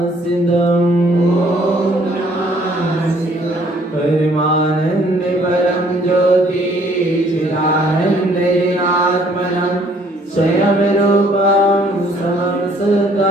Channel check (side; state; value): both; normal; correlation 0.61